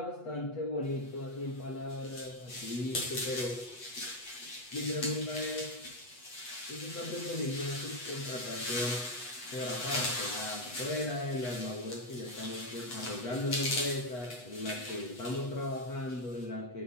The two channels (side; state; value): right; late; 8.1 ms